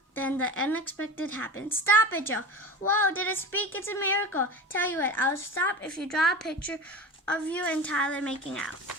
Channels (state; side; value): normal; both; correlation 0.30